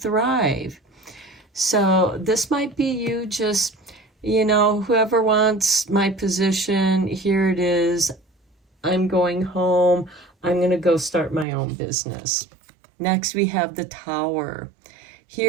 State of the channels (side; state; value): left; drops out; at 11.5 s